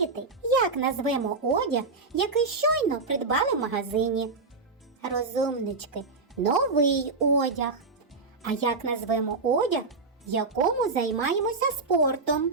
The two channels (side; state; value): left; quieter; 3.9 dB